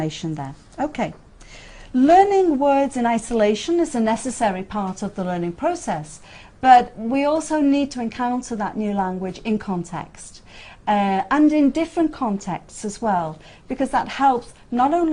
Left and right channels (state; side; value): identical; both; correlation 1.00